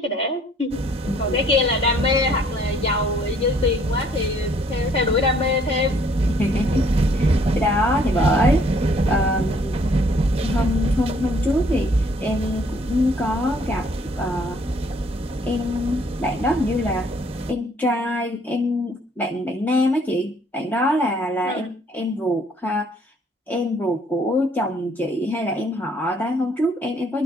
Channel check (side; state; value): both; normal; correlation 0.62